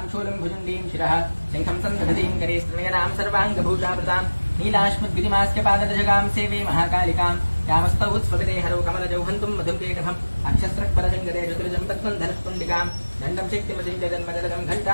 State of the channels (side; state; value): both; inverted; correlation -1.00